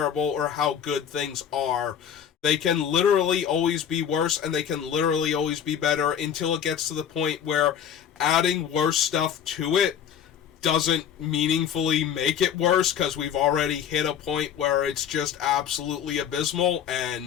or how good things are, they can literally always be worse, and they can literally always be better until it gets to the point where adding worse stuff to it doesn't meaningfully make it worse, because we've already hit a point where it's just absolutely abysmal,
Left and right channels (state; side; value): quieter; right; 8.7 dB